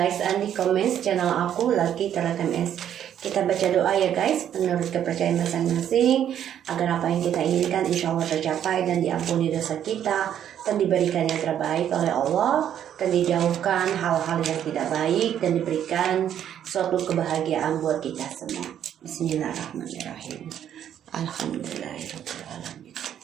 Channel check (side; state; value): left; quieter; 10.0 dB